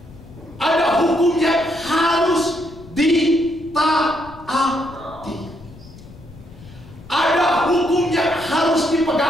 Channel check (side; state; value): left; noise; rumble, 19 dB below the sound